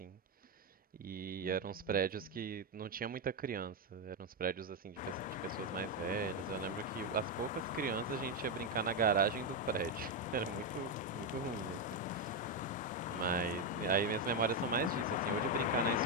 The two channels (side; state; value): both; normal; correlation 0.06